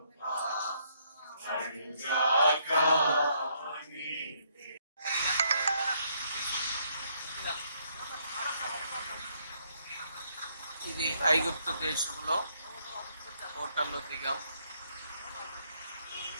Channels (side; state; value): both; inverted; correlation -0.71